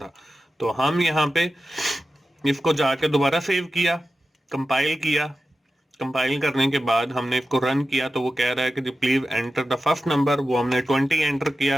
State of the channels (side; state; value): both; normal; correlation 0.93